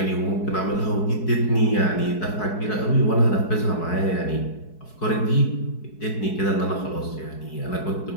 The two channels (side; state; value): right; late; 4.7 ms